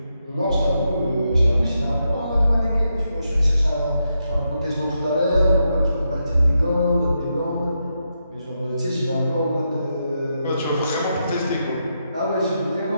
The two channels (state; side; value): inverted; both; correlation -0.84